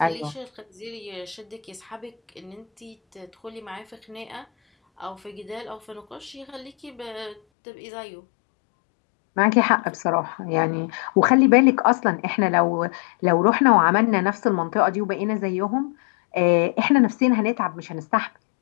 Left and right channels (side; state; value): right; drops out; at 7.4 s